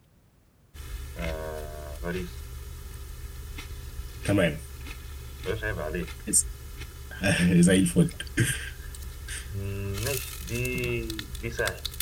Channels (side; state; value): both; identical; correlation 1.00